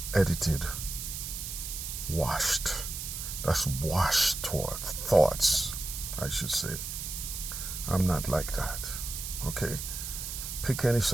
edited, washed. That's washed toward thoughts, I should say. I'm not like that. Okay? Pick any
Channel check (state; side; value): noise; right; hiss, 6 dB below the sound